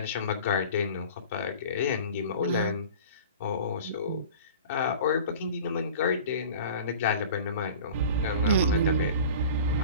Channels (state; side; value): inverted; both; correlation -0.40